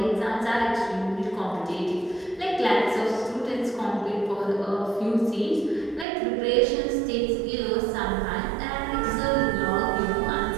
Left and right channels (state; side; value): drops out; left; at 6.1 s